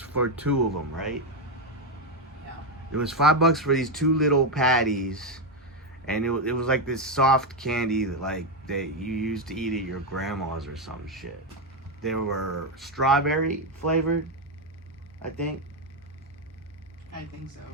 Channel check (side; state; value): both; normal; correlation 0.06